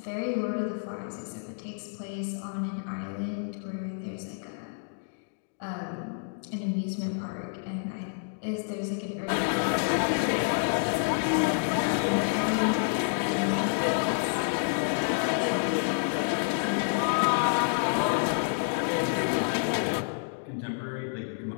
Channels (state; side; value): silent; right; digital silence